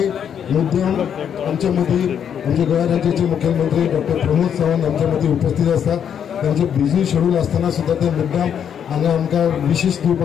मुद्दाम आमच्या मदीं आमचे गोंय राज्याचे मुख्यमंत्री डॉक्टर प्रमोद सावंत आमच्या मदीं उपस्थित आसा। त्यांचे बिझी शेड्यूल असताना सुद्धा ते मुद्दाम हांगा आमकां विशेष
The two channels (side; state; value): right; quieter; 8.4 dB